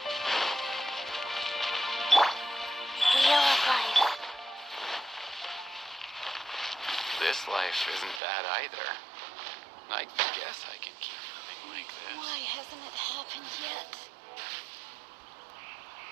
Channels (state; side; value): drops out; left; at 8.2 s